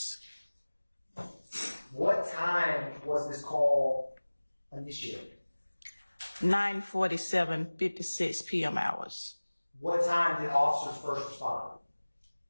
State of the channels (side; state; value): both; inverted; correlation -1.00